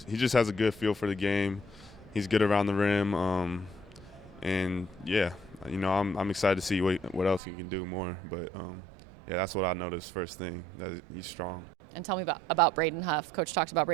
just has a good feel for the game. He's good around the rim. I'm excited to see what else he can do more. But, that's what I noticed first thing, that he's strong. And tell me about Braden Huff. Coach talked about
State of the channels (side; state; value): left; drops out; at 7.4 s